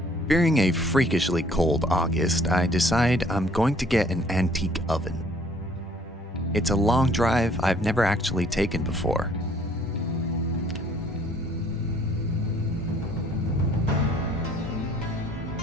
Fearing a freakishly cold August, I decide I'm going to get an antique oven. It's a long drive I've never actually taken before.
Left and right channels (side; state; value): both; normal; correlation 0.60